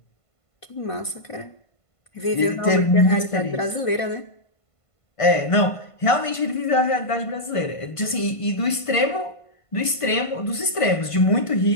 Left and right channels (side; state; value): right; late; 1.5 ms